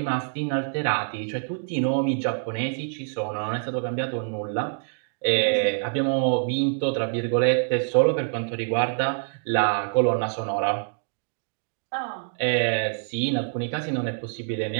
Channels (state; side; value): silent; left; digital silence